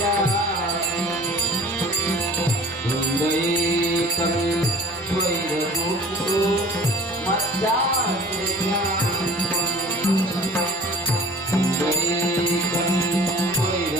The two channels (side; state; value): right; noise; rumble, 27 dB below the sound